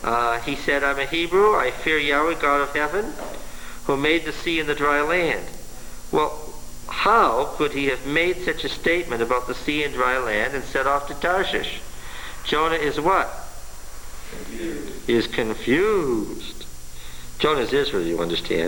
He said, I'm a Hebrew, I fear Yahweh, God of heaven, who made the sea and the dry land. Well, how could he have made such a statement about the sea and dry land and set off to Tarshish? Jonah is what? Confused. He is confused. Jonah's Israel, you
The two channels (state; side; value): identical; both; correlation 1.00